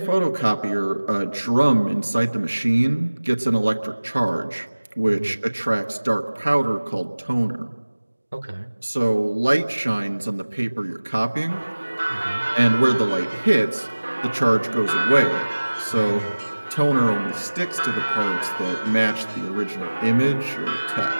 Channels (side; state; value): both; inverted; correlation -1.00